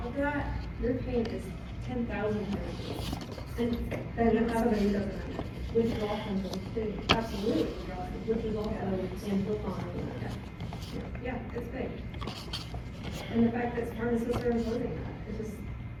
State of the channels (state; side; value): identical; both; correlation 1.00